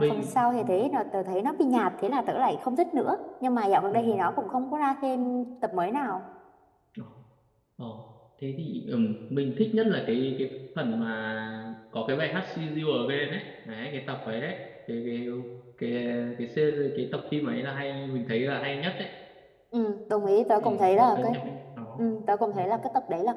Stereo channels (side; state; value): both; identical; correlation 1.00